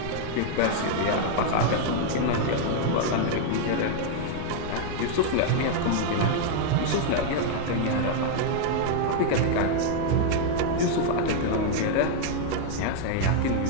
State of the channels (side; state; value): both; different; correlation 0.00